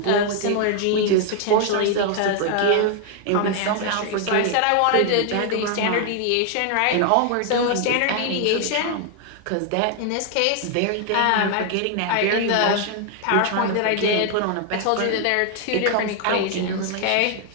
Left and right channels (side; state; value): both; different; correlation 0.00